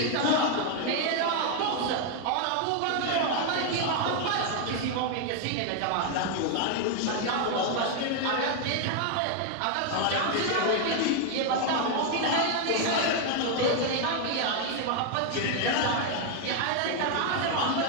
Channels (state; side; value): different; both; correlation 0.00